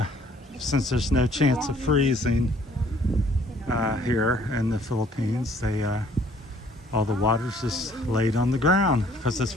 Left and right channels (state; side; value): normal; both; correlation 0.59